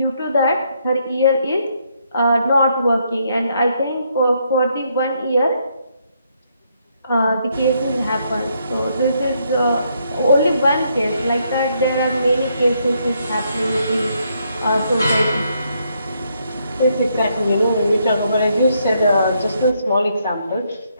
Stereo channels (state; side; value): inverted; both; correlation -0.74